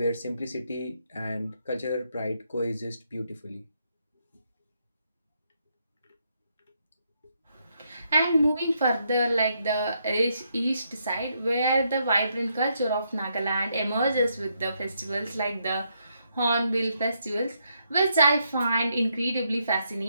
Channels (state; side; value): inverted; both; correlation -0.77